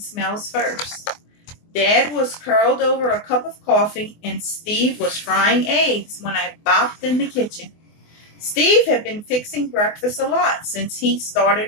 first. Dad was curled over a cup of coffee and Steve was frying eggs when I bopped in the kitchen. Steve had been fixing breakfast a lot since he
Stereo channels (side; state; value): right; late; 24 ms